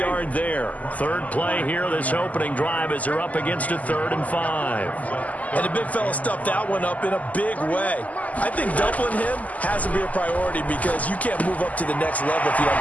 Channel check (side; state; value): right; late; 0.075 ms